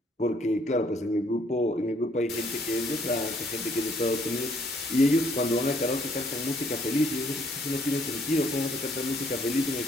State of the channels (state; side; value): normal; both; correlation 0.66